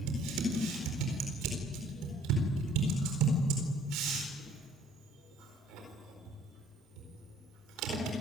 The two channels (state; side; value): normal; both; correlation 0.57